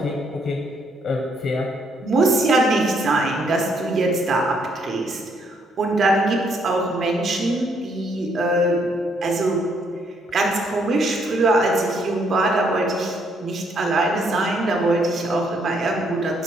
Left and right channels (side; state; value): both; normal; correlation 0.71